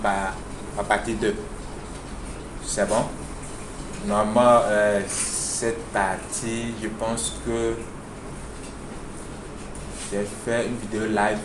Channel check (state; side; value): identical; both; correlation 1.00